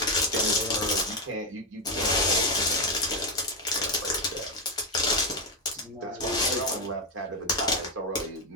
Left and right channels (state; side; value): normal; both; correlation 0.07